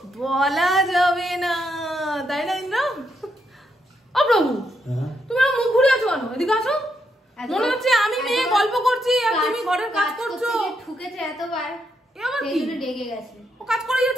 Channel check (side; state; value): both; normal; correlation 0.79